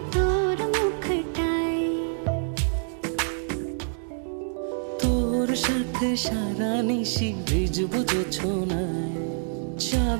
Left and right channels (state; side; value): silent; left; digital silence